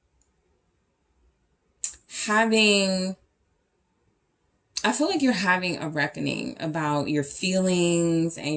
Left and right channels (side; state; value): both; identical; correlation 1.00